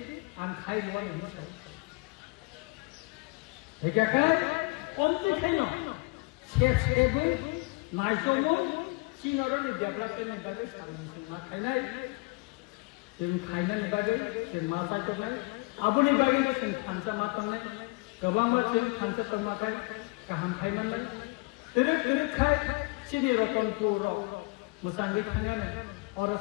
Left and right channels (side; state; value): right; quieter; 27.7 dB